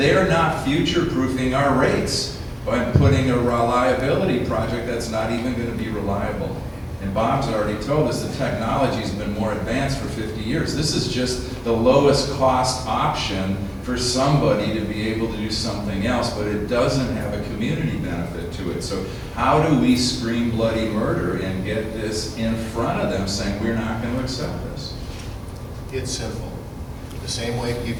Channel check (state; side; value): identical; both; correlation 1.00